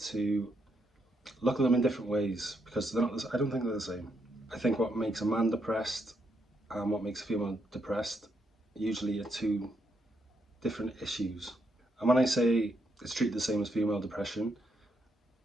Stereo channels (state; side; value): normal; both; correlation 0.78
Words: to look at them in different ways because they're not. I don't think they're the same. I think what makes a man depressed and what makes a female depressed usually are two different issues. And when I say it's treated the same as female depression,